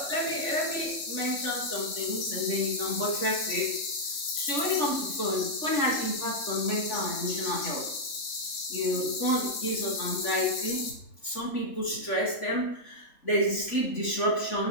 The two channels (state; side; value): late; right; 3.5 ms